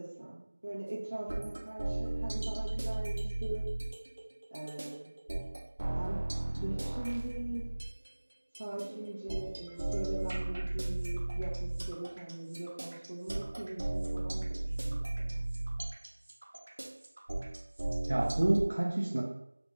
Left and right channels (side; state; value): both; inverted; correlation -1.00